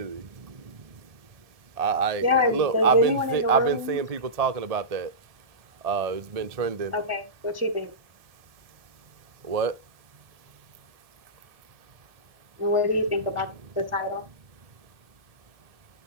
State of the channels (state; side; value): late; left; 1.7 ms